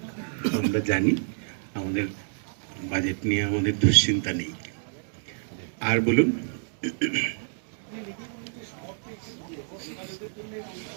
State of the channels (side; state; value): left; silent; 59 dB below the other